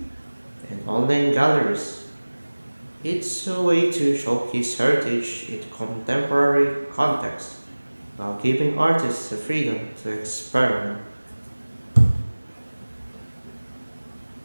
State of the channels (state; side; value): inverted; both; correlation -1.00